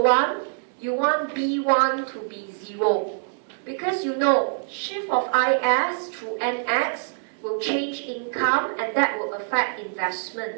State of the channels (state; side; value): silent; left; digital silence